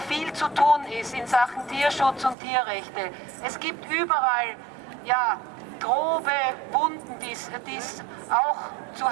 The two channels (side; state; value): left; drops out; at 2.4 s